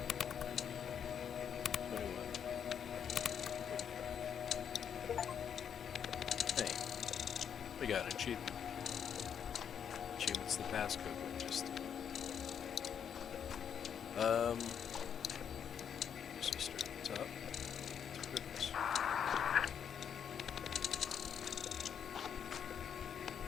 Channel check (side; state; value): right; quieter; 8.1 dB